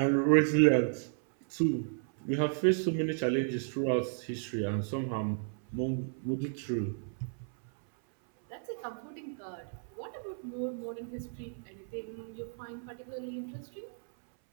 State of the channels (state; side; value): silent; left; 56 dB below the other